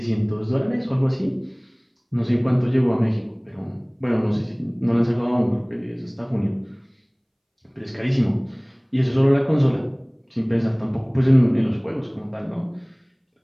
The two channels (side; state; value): both; identical; correlation 1.00